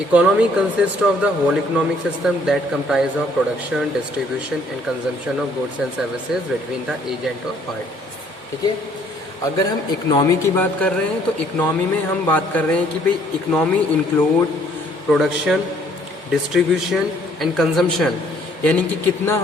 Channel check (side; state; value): both; normal; correlation 0.62